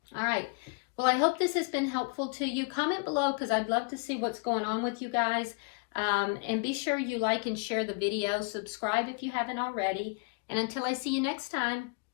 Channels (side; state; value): right; quieter; 32.4 dB